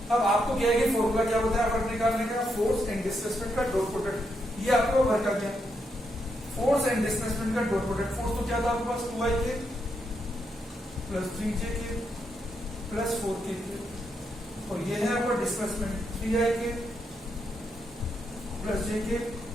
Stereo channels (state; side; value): normal; both; correlation 0.80